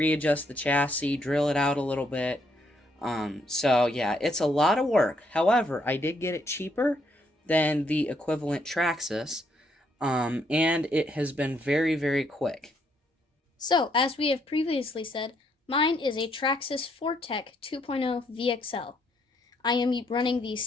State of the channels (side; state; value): both; normal; correlation 0.73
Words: the chassis, drill it out a little bit. So yeah, it's a lot of work. However, I did get it cheaper than the equivalent Traxxas, and it has been very, very quick. So, as we have previously said, mine is a Traxxas Fortec 2.0 VXL. I am running the